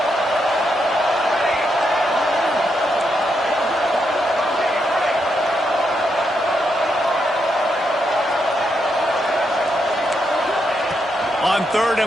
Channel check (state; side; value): normal; both; correlation 0.81